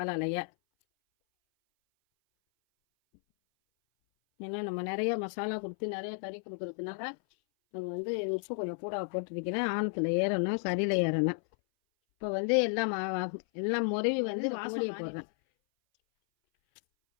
ஏன்னா நம்ம நிறைய மசாலா கொடுத்து நிறைய கறி கொடுக்கறதுனால அது வந்து உப்பு கொஞ்சம் கூட போட்டுருக்கிறேன். ஆணத்தில் ஏறணும், கறியில் ஏறணும். இப்போ வந்து எல்லாம் முறைவி வந்து கோழியை போடுறேன்.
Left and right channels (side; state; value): right; silent; 56 dB below the other